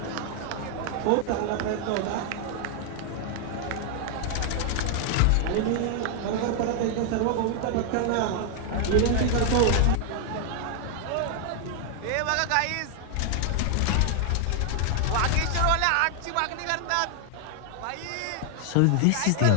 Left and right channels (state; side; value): different; both; correlation 0.00